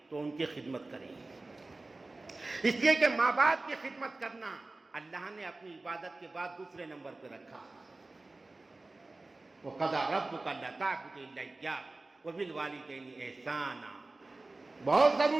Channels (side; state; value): left; quieter; 3.2 dB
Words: تو ان کی خدمت کریں، اس لیے کہ ماں باپ کی خدمت کرنا اللہ نے اپنی عبادت کے بعد دوسرے نمبر پہ رکھا۔ وَقَضَىٰ رَبُّكَ أَلَّا تَعْبُدُوا إِلَّا إِيَّاهُ وَبِالْوَالِدَيْنِ إِحْسَانًا۔ بہت